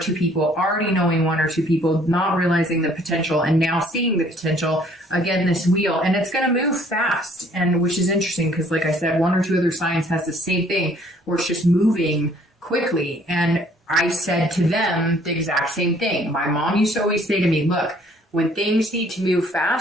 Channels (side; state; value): both; normal; correlation 0.60